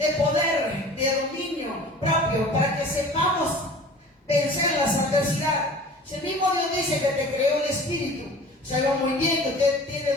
poder, de dominio propio, para que sepamos vencer las adversidades. Si el mismo Dios dice que te creó el espíritu, sabe muy bien que usted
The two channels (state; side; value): normal; both; correlation 0.43